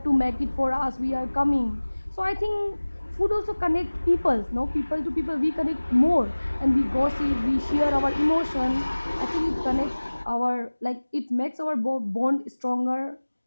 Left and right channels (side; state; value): both; inverted; correlation -1.00